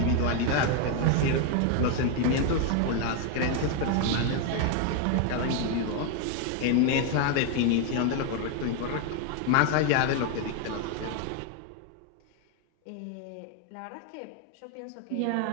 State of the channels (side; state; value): both; different; correlation 0.01